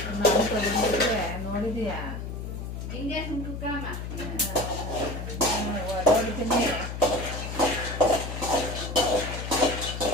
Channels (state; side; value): noise; left; hum, 6 dB below the sound